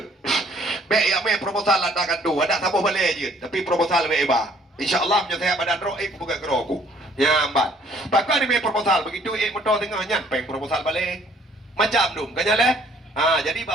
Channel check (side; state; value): both; normal; correlation 0.60